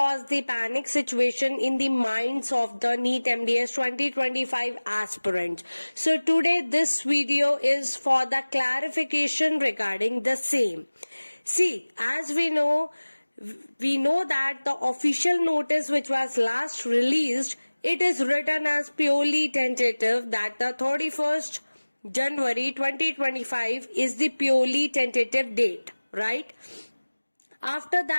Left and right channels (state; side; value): inverted; both; correlation -1.00